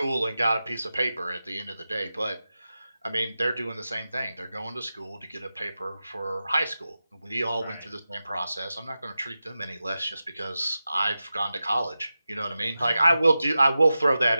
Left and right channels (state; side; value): inverted; both; correlation -0.92